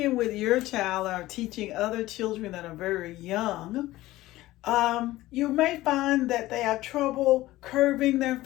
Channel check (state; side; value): quieter; right; 17.0 dB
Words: with your child or teaching other children that are very young, you may find that they have trouble curving their